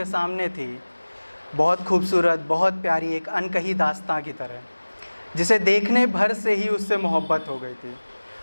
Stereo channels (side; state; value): both; inverted; correlation -1.00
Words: सामने थी, बहुत खूबसूरत, बहुत प्यारी, एक अनकही दास्तां की तरह, जिसे देखने भर से ही उससे मोहब्बत हो गई थी।